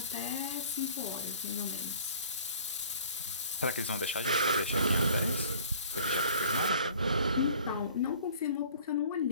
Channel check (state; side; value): inverted; both; correlation -0.49